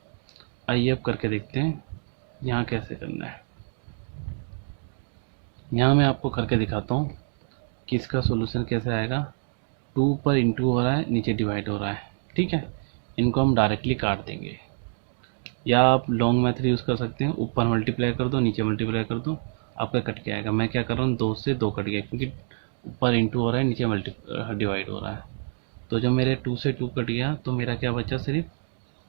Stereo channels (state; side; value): silent; left; digital silence